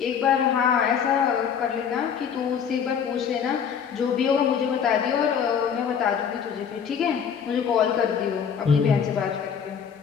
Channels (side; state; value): right; quieter; 7.5 dB